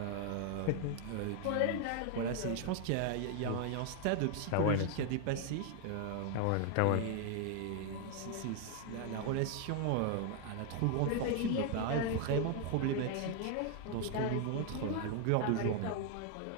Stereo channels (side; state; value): both; different; correlation 0.00